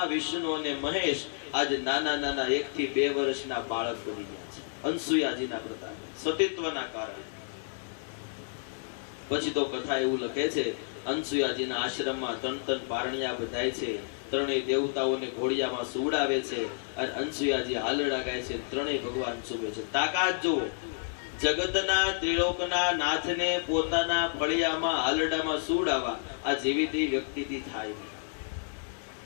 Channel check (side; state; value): right; silent; 58 dB below the other